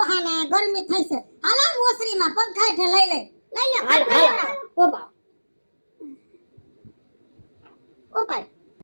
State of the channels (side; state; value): both; inverted; correlation -1.00